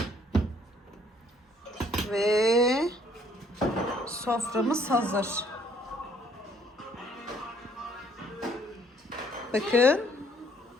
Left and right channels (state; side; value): normal; both; correlation 0.63